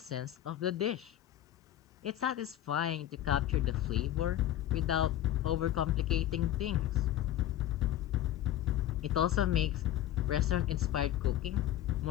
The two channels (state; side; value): quieter; right; 12.6 dB